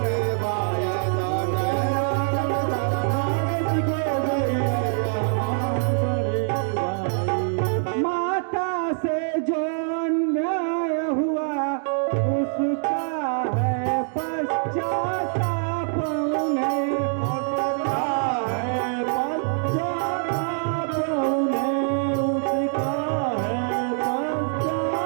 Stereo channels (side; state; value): left; silent; 62 dB below the other